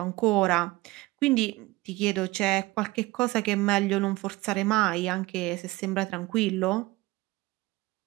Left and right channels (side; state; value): left; quieter; 20.4 dB